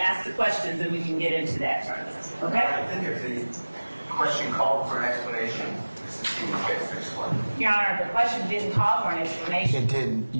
the questions and we can get into that further. Okay? I think if the question called for an explanation, Mr. Stephens gets to explain. Your Honor, the question didn't call for an explanation. It did.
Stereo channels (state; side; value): inverted; both; correlation -1.00